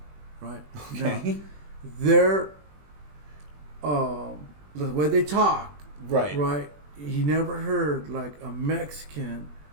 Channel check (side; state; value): left; late; 20 ms